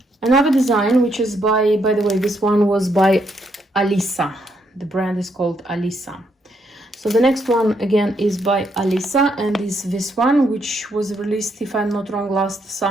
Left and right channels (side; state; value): both; normal; correlation 0.75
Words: Another design which is by the way, this one was by Alisa. The brand is called Alisa. So the next one again is by Alisa, and is this one, which was released, if I'm not wrong, last